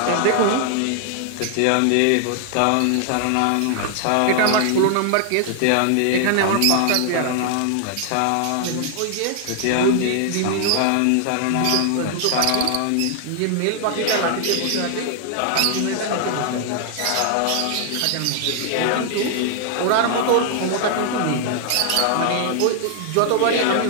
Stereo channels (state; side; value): different; both; correlation 0.00